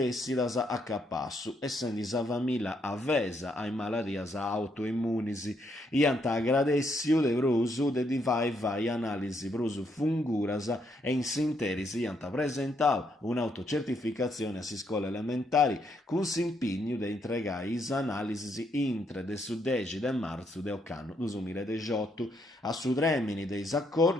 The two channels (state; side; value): normal; both; correlation 0.75